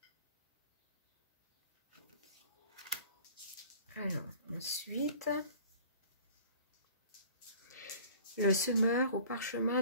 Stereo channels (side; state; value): both; inverted; correlation -0.47